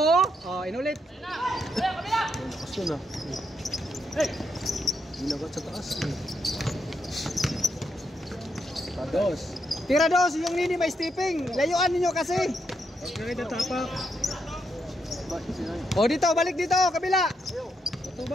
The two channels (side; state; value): both; normal; correlation 0.79